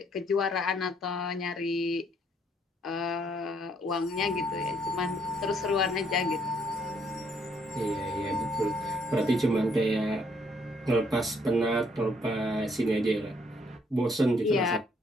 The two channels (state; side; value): normal; both; correlation 0.68